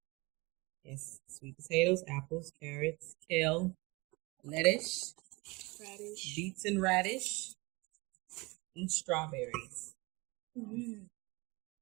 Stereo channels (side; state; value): left; quieter; 25.4 dB